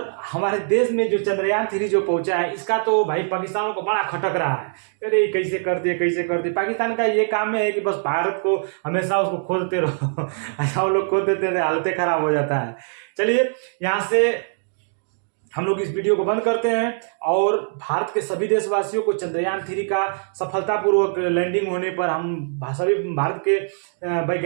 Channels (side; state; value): left; silent; digital silence